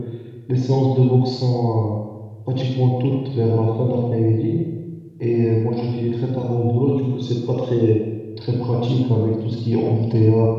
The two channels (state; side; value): identical; both; correlation 1.00